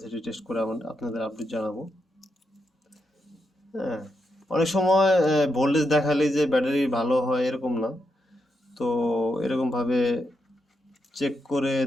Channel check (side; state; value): both; normal; correlation 0.83